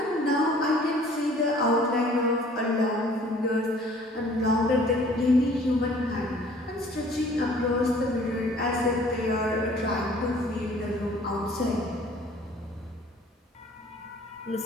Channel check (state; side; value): normal; both; correlation 0.53